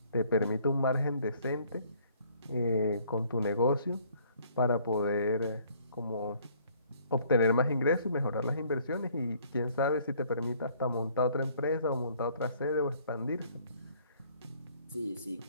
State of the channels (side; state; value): both; inverted; correlation -0.60